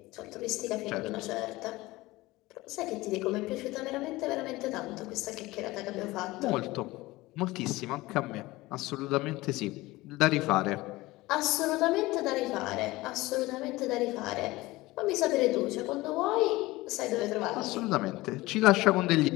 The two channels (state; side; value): quieter; right; 19.7 dB